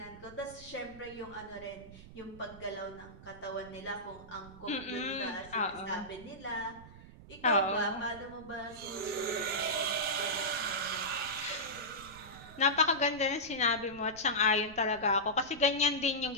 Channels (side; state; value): right; noise; rumble, 18 dB below the sound